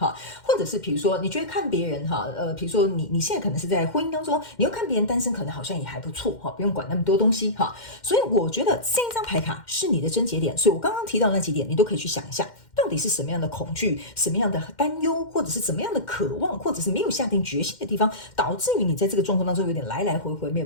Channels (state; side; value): late; right; 2.1 ms